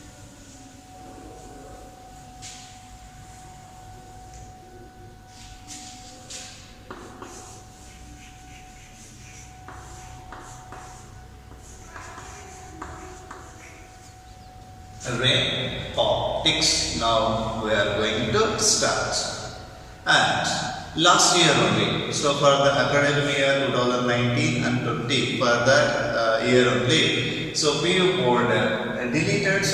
Ray optics. Now we are going to start. And last year only, so for the academic year 2019 and 20, for that year only, so PU board deleted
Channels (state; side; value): identical; both; correlation 1.00